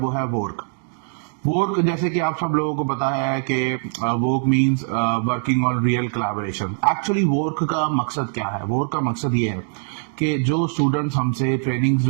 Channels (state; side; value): silent; left; digital silence